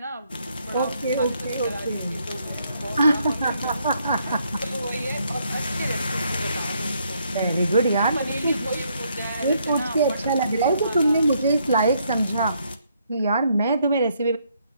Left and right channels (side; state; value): both; inverted; correlation -0.72